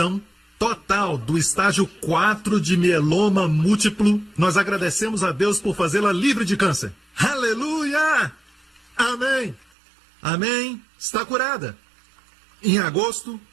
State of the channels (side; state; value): left; drops out; at 9.7 s